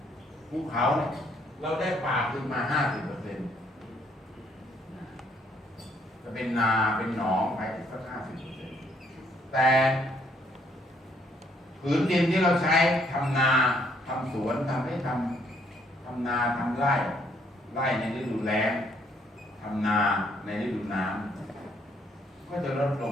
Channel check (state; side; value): normal; both; correlation 0.68